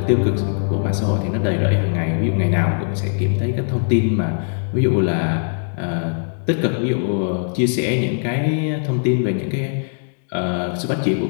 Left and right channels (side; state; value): right; silent; digital silence